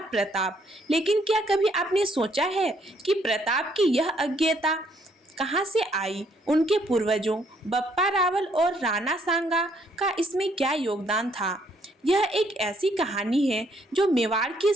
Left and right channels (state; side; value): normal; both; correlation 0.69